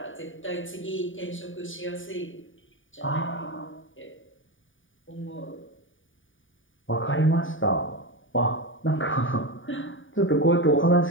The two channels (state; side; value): late; right; 0.57 ms